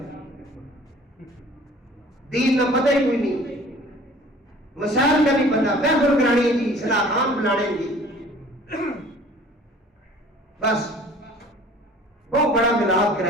دین کا پتہ ہی کوئی نہیں، مسائل کا نہیں پتہ، محفل کرانی جی، صلاح خان بلانے جی، بس بہت بڑا ملاد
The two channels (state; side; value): normal; both; correlation 0.50